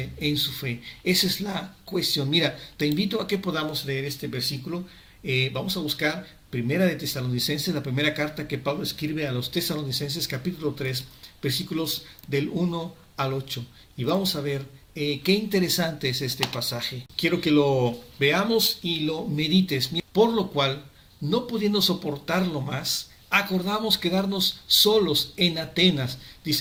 en su fe. Esa es la cuestión. Mira, te invito a que podamos leer este versículo. Vamos a buscar Primera de Tesalonicenses, la primera carta que Pablo escribe a los Tesalonicenses, capítulo 3, versículos del 1 al 8. Y vamos a ver qué interesante es este pasaje. Quiero que lo veamos y lo medites. Por lo cual, no pudiendo soportarlo más, acordamos quedarnos solos en Atenas,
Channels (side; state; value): both; identical; correlation 1.00